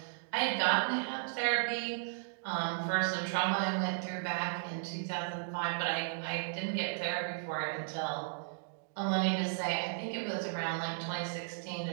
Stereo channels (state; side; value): silent; left; digital silence